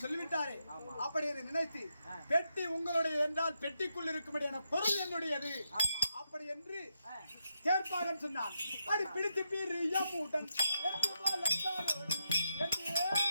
சொல்லிவிட்டாரே. அப்படி என்று நினைத்து பெட்டி உங்களுடைய என்றால் பெட்டிக்குள் இருக்கும்படியான பொருள் என்னுடையது அப்படி என்று கேட்பாகன் சொன்னான். அடி பிடித்து பீர் யமுடன்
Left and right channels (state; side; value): inverted; both; correlation -0.84